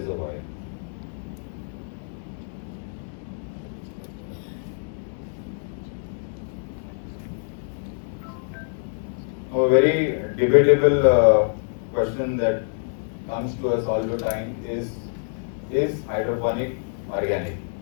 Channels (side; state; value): right; silent; digital silence